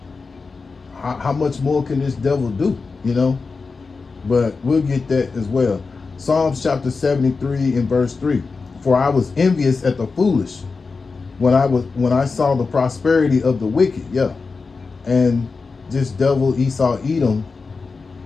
how much more can this devil do? But we'll get that as well. Psalms chapter 73 and verse 3. For I was envious at the foolish when I saw the prosperity of the wicked. Yeah. And this devil Esau Edom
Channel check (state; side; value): quieter; right; 4.4 dB